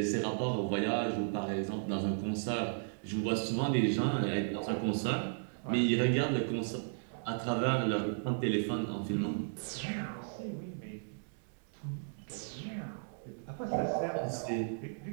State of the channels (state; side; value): silent; left; digital silence